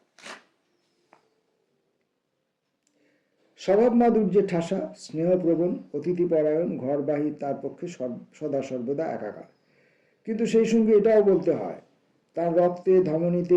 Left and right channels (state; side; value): identical; both; correlation 1.00